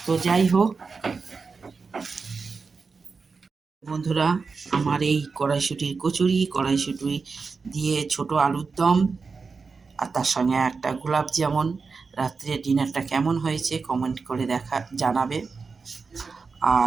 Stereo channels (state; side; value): quieter; left; 4.7 dB